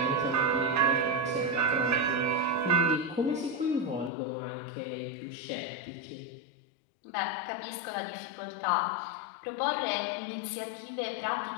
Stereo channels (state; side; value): drops out; right; at 4.1 s